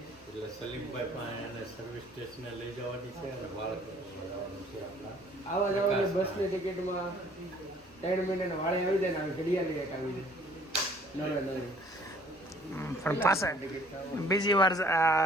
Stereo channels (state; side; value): normal; both; correlation 0.57